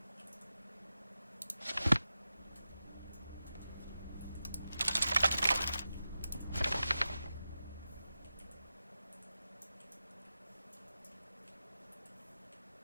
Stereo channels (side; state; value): both; inverted; correlation -0.91